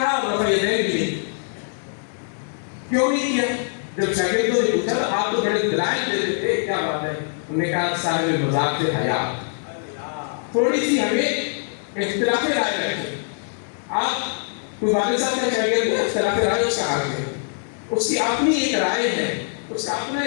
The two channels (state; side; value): silent; right; 63 dB below the other